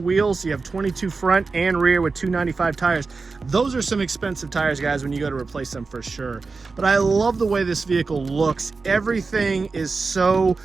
So you have 22 front and rear with 295 tires. Those are some expensive tires, guys, when you go to replace them for sure. But I love the way this vehicle looks. Every everything is so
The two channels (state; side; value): quieter; left; 4.2 dB